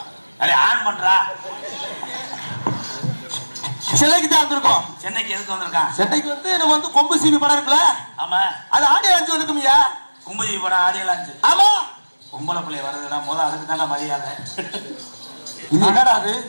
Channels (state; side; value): inverted; both; correlation -1.00